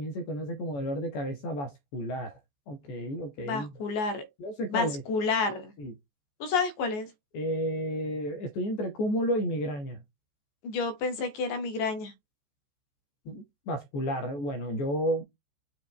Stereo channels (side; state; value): right; late; 14 ms